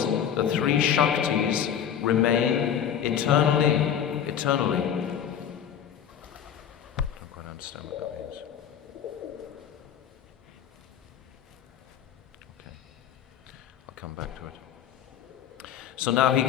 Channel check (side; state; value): right; quieter; 9.1 dB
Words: the three Shaktis remain eternally. I don't quite understand what that means. Okay, I'll come back to it. So now he